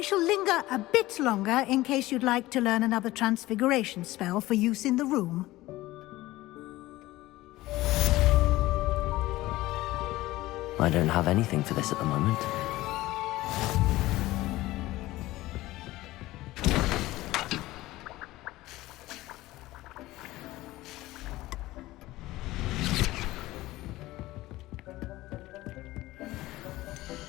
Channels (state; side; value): quieter; right; 17.7 dB